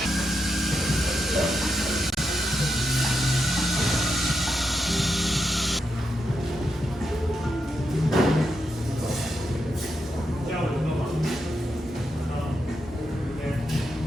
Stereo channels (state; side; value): normal; both; correlation 0.84